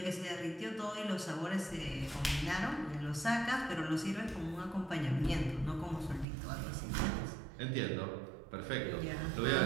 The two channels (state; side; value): drops out; left; at 6.2 s